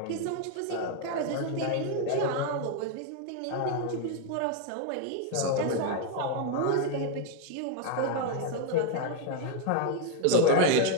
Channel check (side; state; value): both; different; correlation 0.01